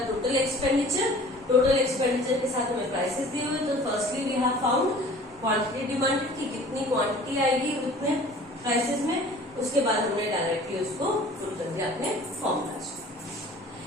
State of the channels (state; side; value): normal; both; correlation 0.47